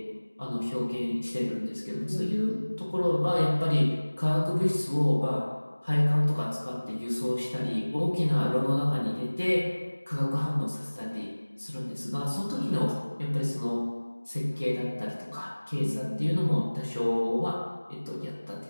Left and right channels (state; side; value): inverted; both; correlation -1.00